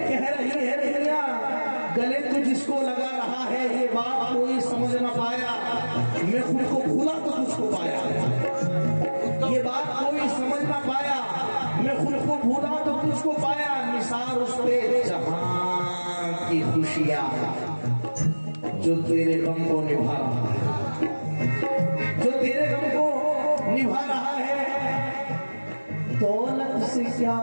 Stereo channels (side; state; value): both; inverted; correlation -1.00